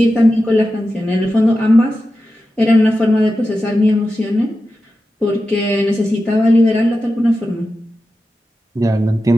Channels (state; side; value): normal; both; correlation 0.92